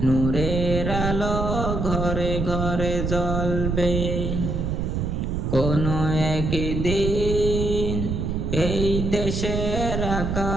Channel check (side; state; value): right; noise; rumble, 1 dB below the sound